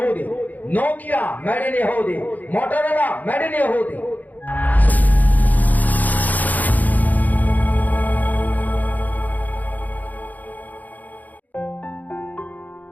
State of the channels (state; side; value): late; right; 0.081 ms